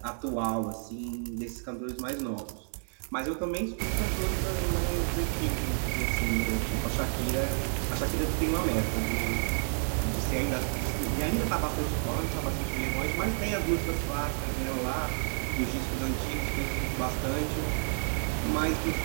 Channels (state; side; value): silent; left; 58 dB below the other